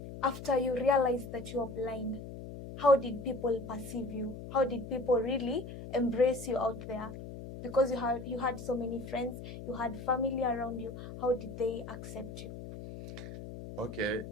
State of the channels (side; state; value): left; noise; hum, 10 dB below the sound